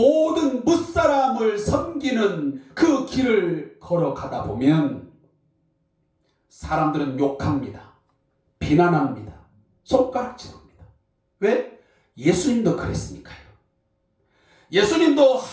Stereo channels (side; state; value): both; identical; correlation 1.00